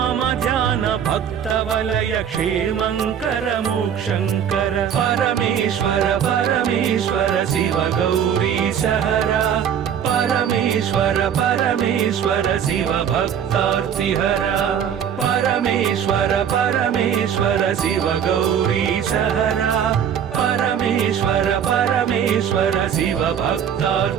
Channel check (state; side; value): quieter; left; 8.5 dB